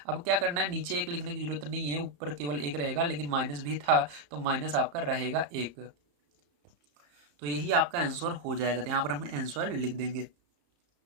अब क्या करना है, नीचे एक लिखने की जरूरत नहीं है, ऊपर केवल एक रहेगा। लेकिन माइनस भी था तो माइनस आपका रहेगा 1। तो यही आपका आंसर हो जाएगा। तो यहाँ पर हम आंसर लिख देंगे।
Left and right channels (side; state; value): left; late; 34 ms